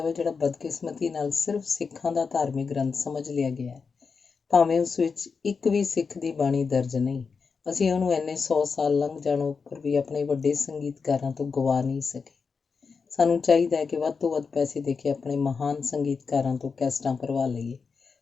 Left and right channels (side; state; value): right; quieter; 5.2 dB